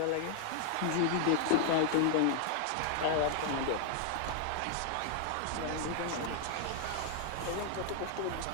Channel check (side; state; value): both; different; correlation 0.00